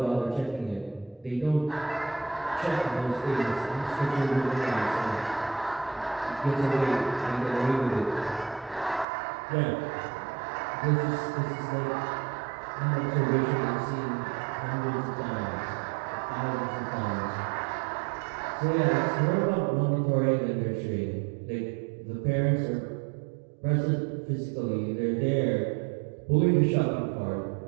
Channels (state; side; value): drops out; left; at 9.1 s